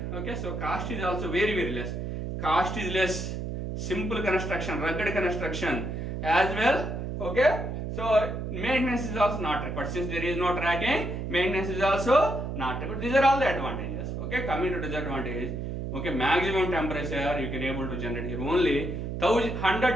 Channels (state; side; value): noise; right; hum, 4 dB below the sound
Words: Okay, so cost is also very less. Cost is less. Simple construction, rugged construction as well. Okay, so maintenance is also not required. Since there is no tracking, maintenance is also not required. These are all the advantages. Okay, coming to disadvantage. Okay, maximum temperature you can able to generate here only